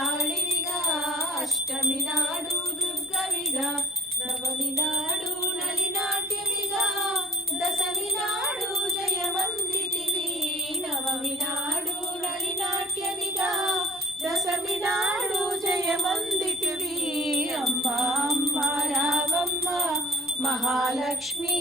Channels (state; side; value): normal; both; correlation 0.50